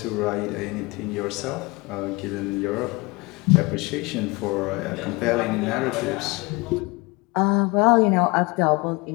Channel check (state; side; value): quieter; right; 25.5 dB